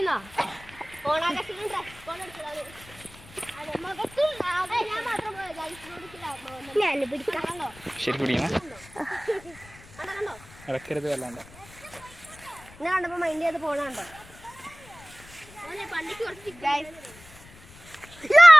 ഓണാകർഷണം ഡ്രസ് കോഡ് എടുത്തതാണ്. ഞാൻ പിടിക്കാം. ശരി പിടിക്കണം, ഇടക്കരുത് വല്ലാണ്ട്. ഞാൻ കണ്ടപ്പോ മൈൻഡ് ചെയ്ത് പോണുണ്ടോ?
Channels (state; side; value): noise; left; rumble, 21 dB below the sound